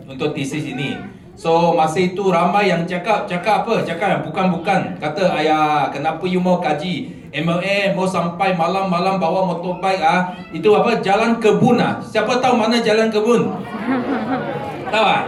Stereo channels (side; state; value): both; identical; correlation 1.00